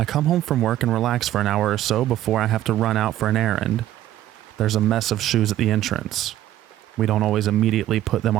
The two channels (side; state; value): left; quieter; 13.2 dB